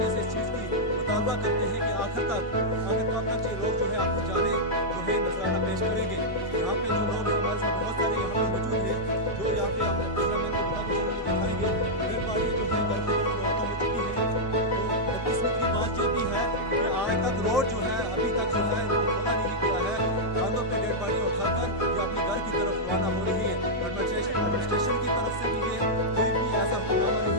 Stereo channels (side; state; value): both; normal; correlation -0.06